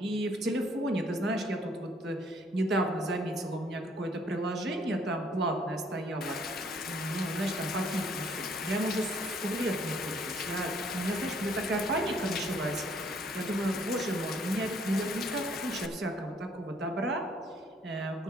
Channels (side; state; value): both; normal; correlation 0.64